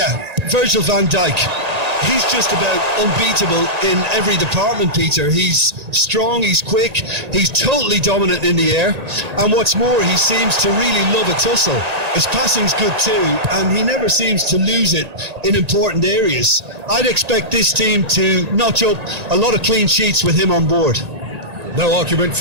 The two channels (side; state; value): left; late; 1.9 ms